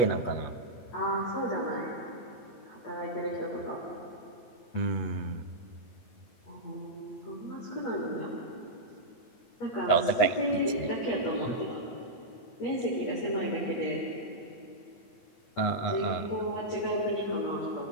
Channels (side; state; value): right; late; 8.2 ms